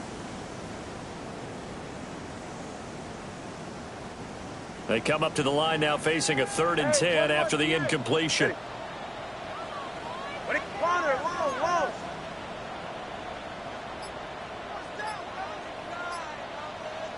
They come up to the line now facing a 3rd and 10 after the incompletion.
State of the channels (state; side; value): identical; both; correlation 1.00